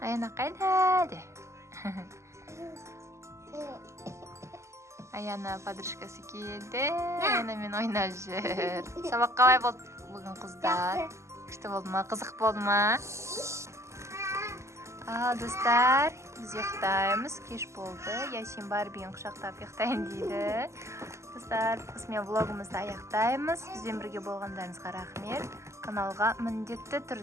қайда де? Аяна подружкасы келді, Аянамен ойнап жүр. Сабақ қалай болды бүгін, қыздар? Күшті болды ма? Қызық болды ма? Ал, достар, біз ұйықтаймыз, кеш болды. Ясин Барбиін құшақтап ұйықтайын дейді. Достар, осымен влогымызды аяқтаймыз. Бізбен бірге болғандарыңызға рахмет. Каналға міндетті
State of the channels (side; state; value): left; late; 0.13 ms